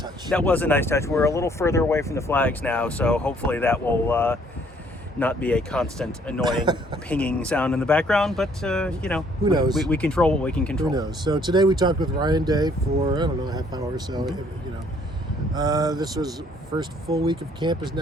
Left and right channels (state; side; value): normal; both; correlation 0.63